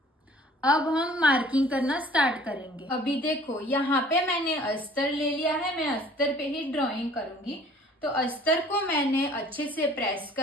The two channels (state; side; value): normal; both; correlation 0.52